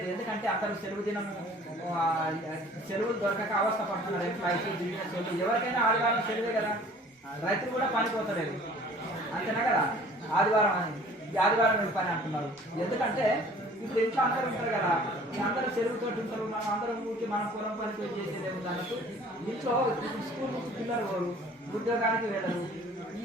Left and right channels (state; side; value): normal; both; correlation 0.51